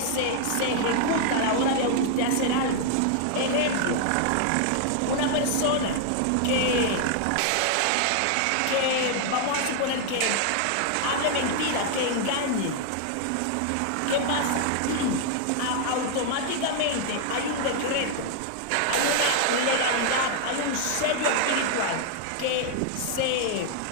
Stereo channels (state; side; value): different; both; correlation 0.00